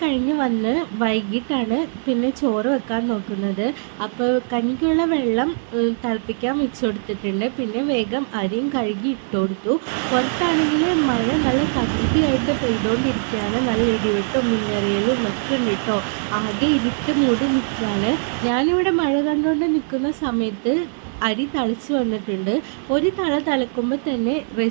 കഴിഞ്ഞ് വന്ന് വൈകിട്ടാണ് പിന്നെ ചോറ് വെക്കാൻ നോക്കുന്നത്. അപ്പോൾ കഞ്ഞിക്കുള്ള വെള്ളം തിളപ്പിക്കാൻ വെച്ച് കൊടുത്തിട്ടുണ്ട്. പിന്നെ വേഗം അരിയും കഴുകി ഇട്ട് കൊടുത്തു. പുറത്താണെങ്കിൽ മഴ നല്ല തകൃതിയായിട്ട് പെയ്തുകൊണ്ടിരിക്കുകയാണ്. നല്ല ഇടിവെട്ടും മിന്നറിയലും ഒക്കെ ഉണ്ട് കേട്ടോ. ആകെ ഇരുട്ട് മൂടി നിൽക്കുകയാണ്. ഞാനിവിടെ മഴ കണ്ടുകൊണ്ട് നിൽക്കുന്ന സമയത്ത് അരി തിളച്ച് വന്നിട്ടുണ്ട്. ഒരു തിളക്കുമ്പോൾ തന്നെ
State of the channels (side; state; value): left; silent; digital silence